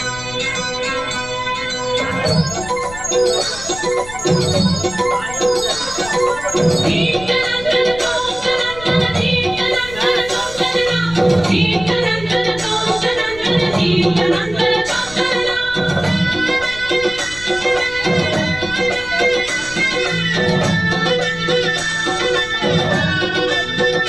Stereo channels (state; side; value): noise; left; rumble, 15 dB below the sound